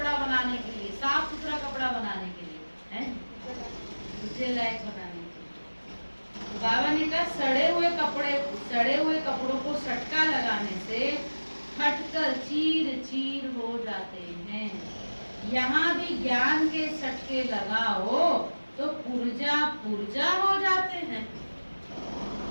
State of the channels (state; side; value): inverted; both; correlation -1.00